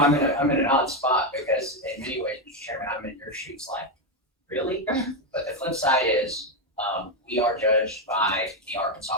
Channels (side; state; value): both; normal; correlation 0.07